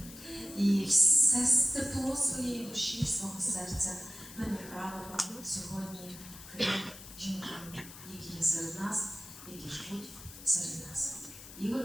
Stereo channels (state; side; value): noise; left; hiss, 15 dB below the sound